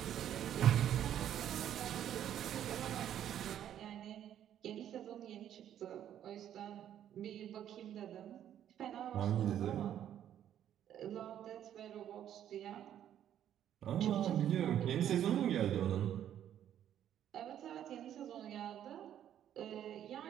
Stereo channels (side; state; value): left; quieter; 10.6 dB